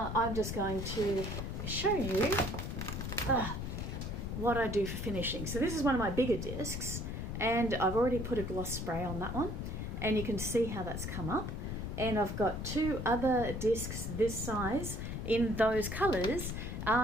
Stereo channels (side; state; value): left; noise; rumble, 4 dB below the sound